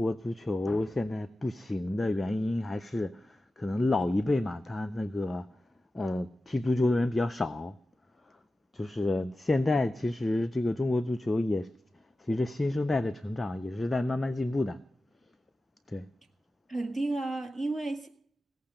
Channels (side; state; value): both; normal; correlation 0.94